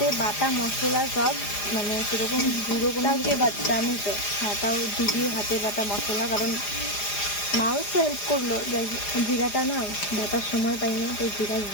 বাটা মশলা সব, মানে সেরকম গুঁড়ো কোনো কিছু বাচ্চা আমি তো। হ্যাঁ, তাও দিদির হাতে বাটা মশলা, কারণ মাও একটু হেল্প করলো। জিরাটা না বাটার সময় পাইনি, তো জিরা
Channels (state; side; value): late; right; 4.9 ms